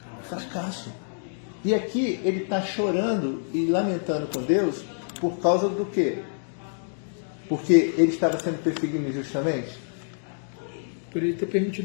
Fracasso. E aqui ele está chorando e lamentando com Deus por causa do quê? Porque ele estava sendo perseguido injustamente? Por ele ter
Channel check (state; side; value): silent; right; digital silence